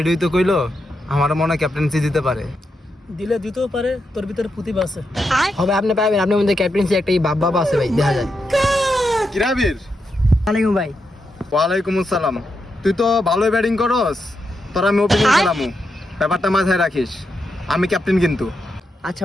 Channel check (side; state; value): both; normal; correlation 0.85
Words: তো কইলো, আমার মনে হয় ক্যাপ্টেন্সি দিতে পারে। দিলে দিতেও পারে, তোর ভিতরে প্রতিভা আছে। হবে আপনি পাবেন, আপনার মধ্যে ক্যাপ্টেন্সি একটা ভাব আছে ভাই, দেখা যায়। কিরাবির? ওয়ালাইকুম ভাই। ওয়ালাইকুম আসসালাম। তুই তো ভালোই ব্যাটিং করস, তোর আমি ওপেনিং খেলামু, ব্যাপারটা মাথায় রাখিস। আমি ক্যাপ্টেন কিন্তু। আচ্ছা